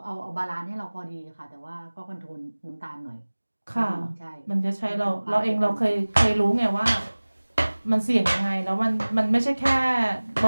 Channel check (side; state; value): both; inverted; correlation -1.00